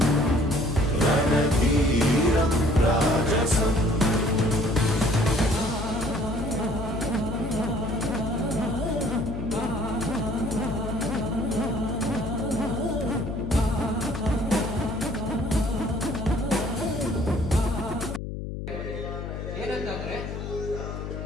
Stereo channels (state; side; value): noise; left; hum, 6 dB below the sound